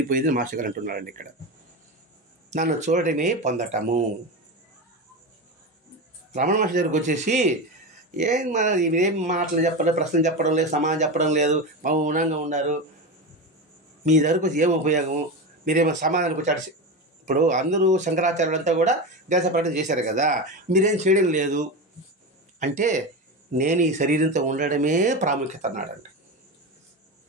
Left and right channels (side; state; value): both; normal; correlation 0.20